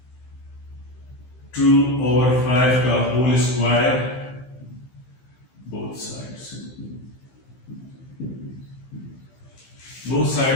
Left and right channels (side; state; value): right; late; 15 ms